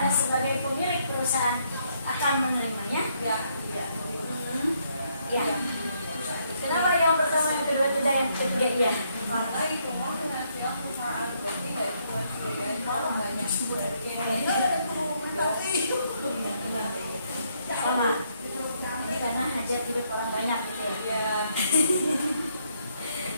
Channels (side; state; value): both; inverted; correlation -0.73